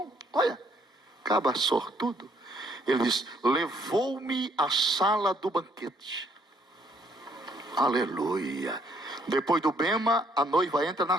Olha, caba sortudo. Ele diz: levou-me à sala do banquete. Aleluia. Depois do bema, a noiva entra na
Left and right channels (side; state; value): both; normal; correlation 0.67